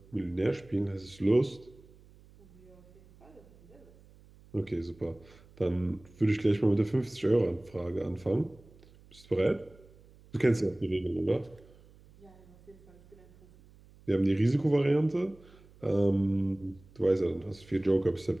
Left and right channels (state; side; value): noise; right; hum, 25 dB below the sound